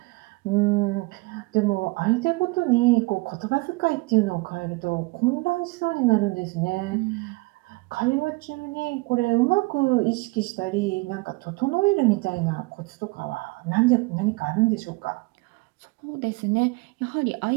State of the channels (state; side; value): quieter; left; 25.1 dB